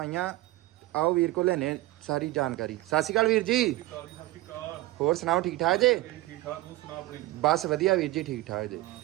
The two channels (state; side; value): quieter; left; 17.8 dB